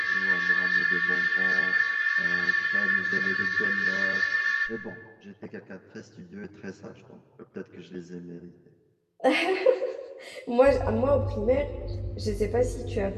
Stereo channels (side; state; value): both; identical; correlation 1.00